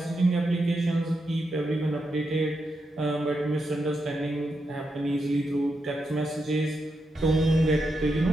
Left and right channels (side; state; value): both; normal; correlation 0.85